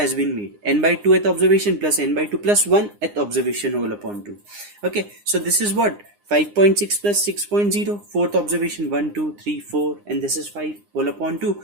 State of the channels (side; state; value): left; late; 9.8 ms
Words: been made. N by 2th observation plus n by 2 plus 1th observation whole upon 2. Okay, so this is what? 5.6 plus 6.0, 4th observation 1, 2, 3, 4, and this is 5 whole upon 2.